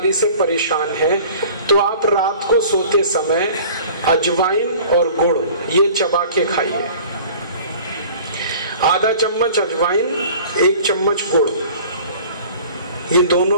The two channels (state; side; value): inverted; both; correlation -0.45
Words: से परेशान हैं, तो आप रात को सोते समय अजवाइन और गुड़ ये चबा के खाइए। आधा चम्मच अजवाइन, एक चम्मच गुड़, ये